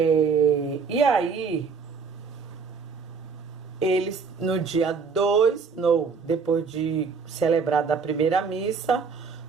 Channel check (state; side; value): quieter; left; 5.3 dB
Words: E aí, eles, no dia 2, depois de celebrada a primeira missa,